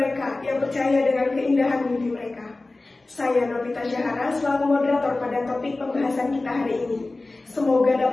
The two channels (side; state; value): right; quieter; 3.1 dB